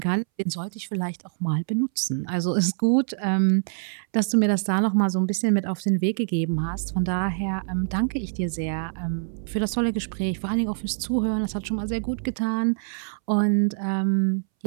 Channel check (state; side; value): silent; left; 62 dB below the other